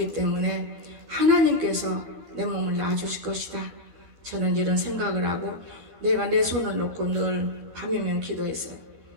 때문에 하나님께서 내 몸을 낳아주실 것이다. 저는 이런 생각을 하고 내가 내 손을 놓고 늘 밤이면 기도했어요.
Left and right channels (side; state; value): left; late; 12 ms